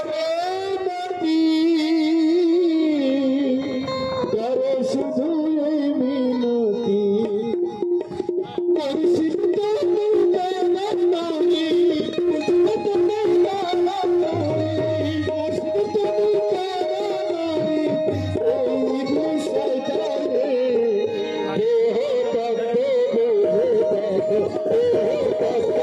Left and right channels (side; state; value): both; identical; correlation 1.00